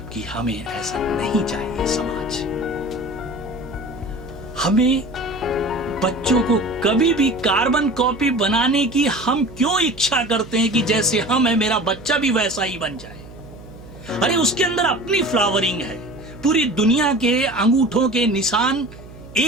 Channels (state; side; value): noise; right; hum, 18 dB below the sound